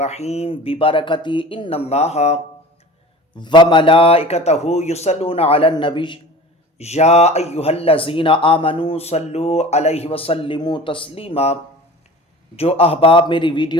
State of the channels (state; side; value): normal; both; correlation 0.39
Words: ببركة ان الله وملائكته يصلون على النبي يا ايها الذين آمنوا صلوا عليه وسلموا تسليما۔ جو احباب میری